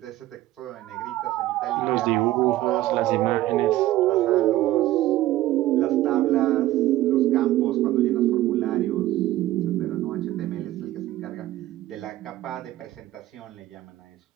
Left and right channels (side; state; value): left; quieter; 15.3 dB